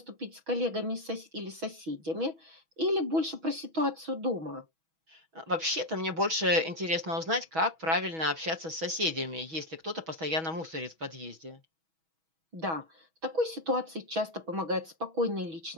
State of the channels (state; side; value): late; left; 6.2 ms